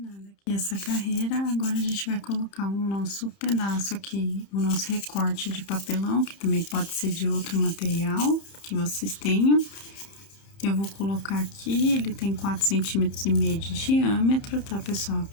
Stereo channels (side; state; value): right; late; 30 ms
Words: aqui essa carreira, agora a gente vai colocar o nosso pedaço aqui, o nosso recorte de papelão, que também pode ser de outro material que vocês tenham. Eu vou colocar aqui, ele tem 4,5 centímetros de diâmetro, tá, pessoal?